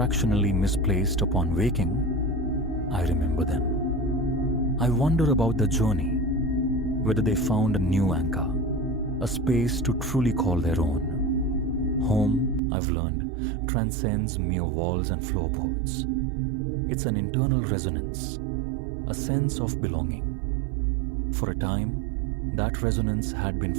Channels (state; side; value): drops out; left; at 12.6 s